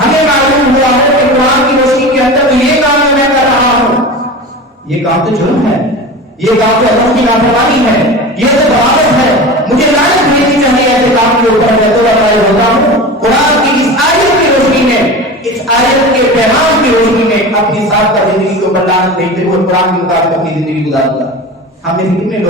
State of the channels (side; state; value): both; normal; correlation 0.31